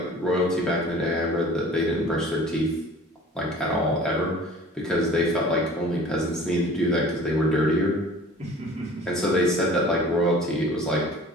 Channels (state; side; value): normal; both; correlation 0.46